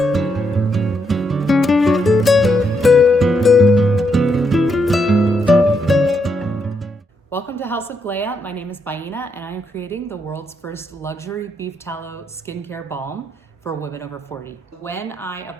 Welcome to House of Gléa. My name is Baina and I am creating the world's first luxury beef tallow skincare balm for women over 40. When I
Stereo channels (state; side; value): normal; both; correlation 0.78